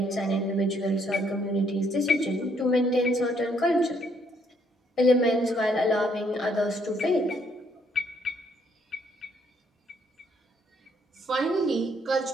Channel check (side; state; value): both; normal; correlation 0.69